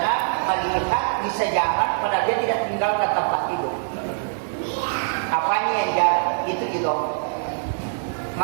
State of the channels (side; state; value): left; silent; digital silence